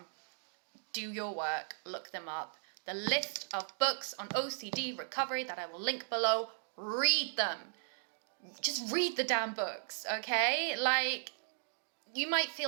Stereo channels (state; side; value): silent; left; digital silence